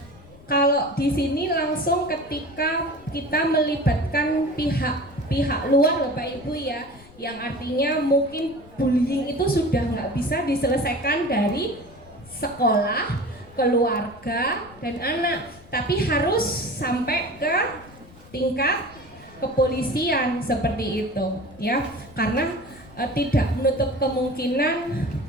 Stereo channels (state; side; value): noise; left; rumble, 23 dB below the sound